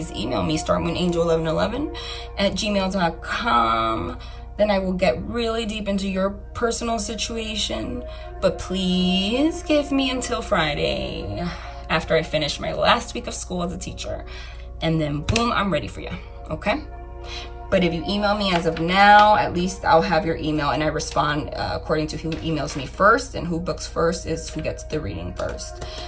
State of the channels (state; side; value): identical; both; correlation 1.00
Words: email me, starmoonangel1111@gmail.com. Then I will get really deep into your personal situation. But please give me until Friday after I finish my last week of school as a teacher. And then boom, I'm ready for you, okay? But if you email me as of now, at least I'll have your email, and I respond according to who emails me first, and who books first is who gets the reading first.